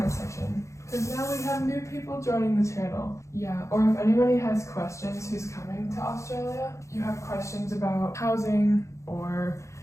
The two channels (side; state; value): right; late; 0.14 ms